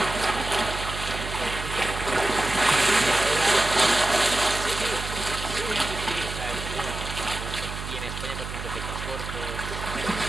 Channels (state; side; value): noise; right; hum, 7 dB below the sound